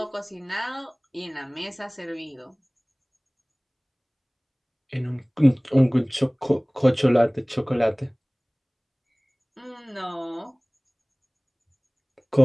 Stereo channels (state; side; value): identical; both; correlation 1.00